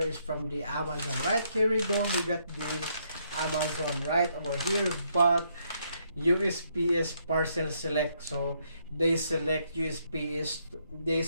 from the Amazon, right? Here we go. We got the Amazon right over here, but USPS parcel select. So they select USPS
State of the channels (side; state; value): both; inverted; correlation -0.73